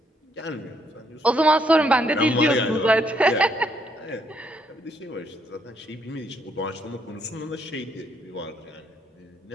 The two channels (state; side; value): normal; both; correlation 0.72